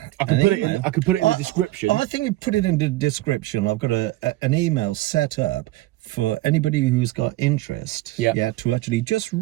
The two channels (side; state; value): left; quieter; 17.6 dB